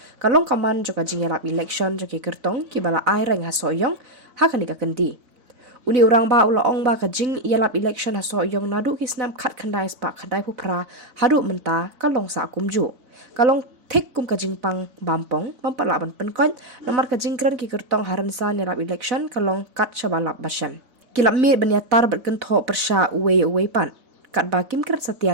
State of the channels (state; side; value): late; left; 4.0 ms